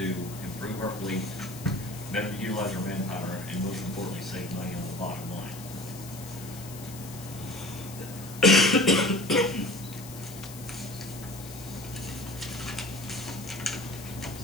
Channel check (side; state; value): left; noise; hiss, 15 dB below the sound